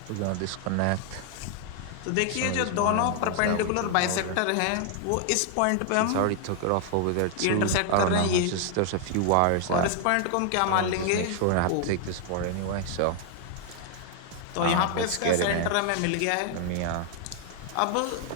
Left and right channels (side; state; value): both; different; correlation 0.00